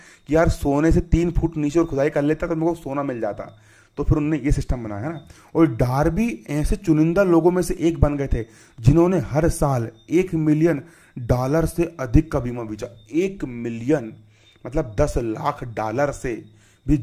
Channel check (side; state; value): both; identical; correlation 1.00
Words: कि यार सोने से 3 फुट नीचे और खुदाई कर लेता तो मेरे को सोना मिल जाता, तो फिर उन्होंने ये सिस्टम बनाया, है ना। और डार्बी ऐसे चुनिंदा लोगों में से एक बन गए थे जिन्होंने हर साल $1 मिलियन से अधिक का बीमा बेचा। 1 मिलियन मतलब $10 लाख से भी